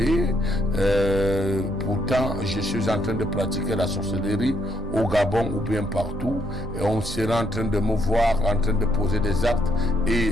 pourtant je suis en train de pratiquer la sorcellerie au Gabon ou bien partout, et on sera en train de me voir en train de poser des actes, et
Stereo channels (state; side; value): normal; both; correlation 0.73